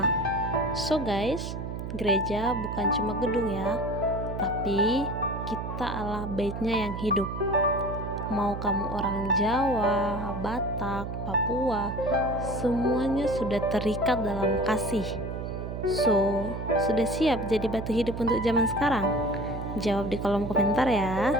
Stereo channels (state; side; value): noise; right; hum, 6 dB below the sound